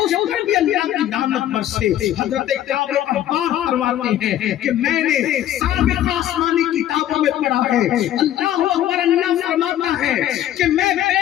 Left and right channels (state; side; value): quieter; right; 12.2 dB